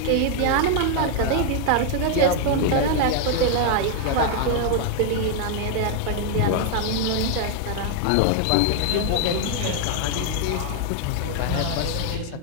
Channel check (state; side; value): different; both; correlation 0.00